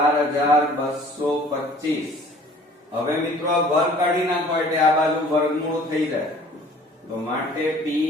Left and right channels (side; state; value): both; normal; correlation 0.51